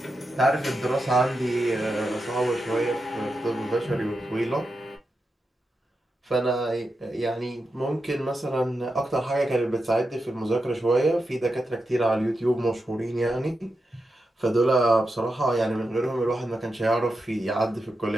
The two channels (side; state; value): both; normal; correlation 0.88